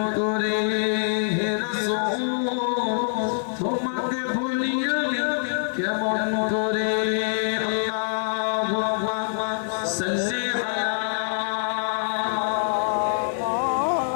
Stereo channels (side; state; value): right; silent; digital silence